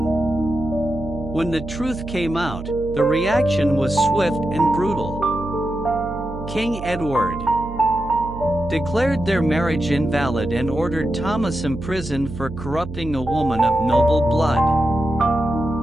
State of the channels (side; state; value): right; noise; hum, 10 dB below the sound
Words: When the truth came out, the reaction was swift and brutal. King Edward declared their marriage invalid and ordered Thomas imprisoned for corrupting a woman of noble blood.